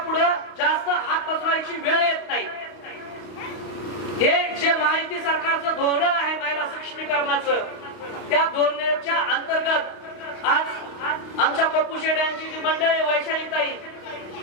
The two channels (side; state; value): right; late; 32 ms